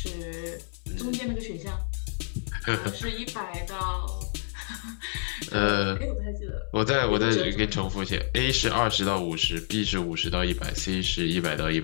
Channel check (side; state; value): right; silent; 59 dB below the other